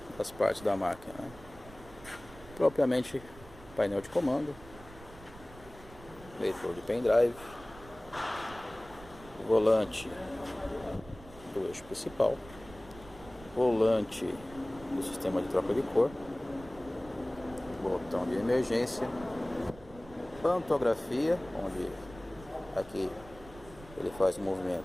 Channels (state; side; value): noise; right; rumble, 19 dB below the sound